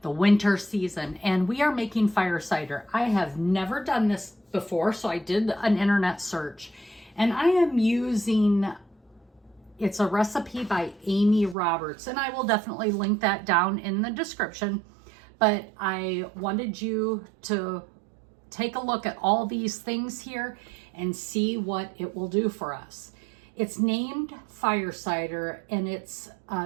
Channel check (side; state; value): left; drops out; at 11.6 s